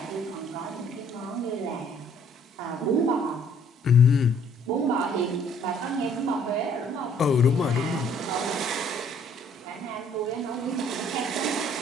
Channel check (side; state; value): both; normal; correlation 0.61